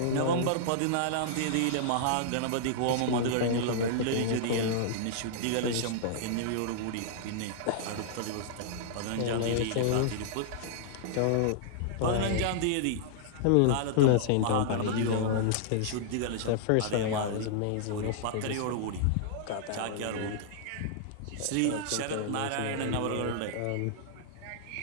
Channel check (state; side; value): different; both; correlation -0.01